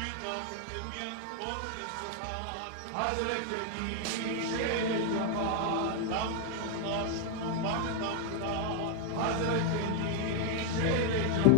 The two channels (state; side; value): different; both; correlation 0.00